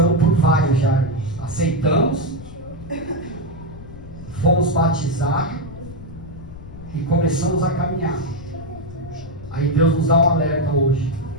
por vários já. Aceitamos, fomos batizados, e começamos a caminhar. Aí Deus nos dá um alerta hoje.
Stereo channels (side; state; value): left; noise; rumble, 15 dB below the sound